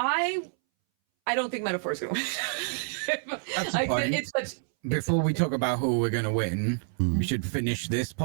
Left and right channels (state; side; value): silent; left; 59 dB below the other